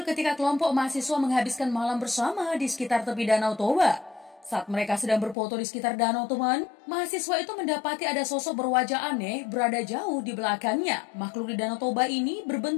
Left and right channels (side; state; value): right; drops out; at 5.4 s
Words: ketika kelompok mahasiswa menghabiskan malam bersama di sekitar tepi Danau Toba. Saat mereka sedang berfoto di sekitar danau teman, mahasiswa itu mendapati ada sosok berwajah aneh berada jauh di belakangnya. Makhluk di Danau Toba ini